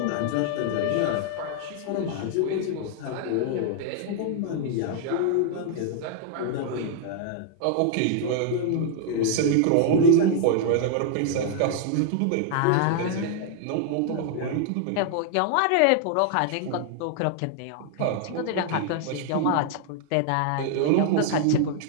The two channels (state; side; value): different; both; correlation 0.00